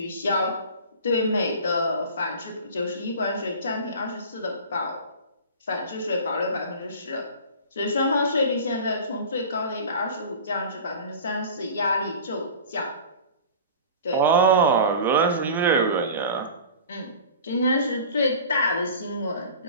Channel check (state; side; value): inverted; both; correlation -0.38